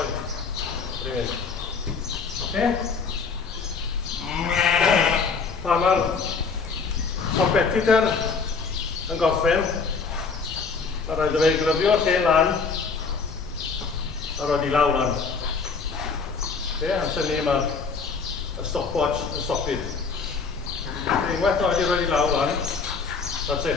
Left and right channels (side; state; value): right; quieter; 5.1 dB